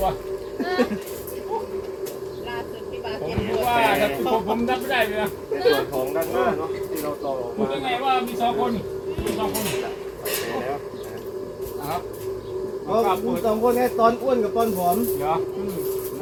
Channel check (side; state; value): both; identical; correlation 1.00